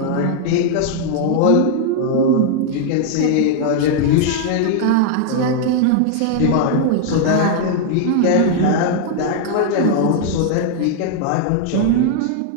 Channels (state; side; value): different; both; correlation 0.00